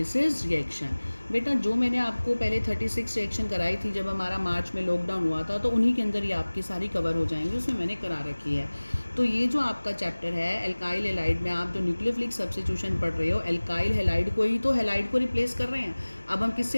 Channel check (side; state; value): both; inverted; correlation -1.00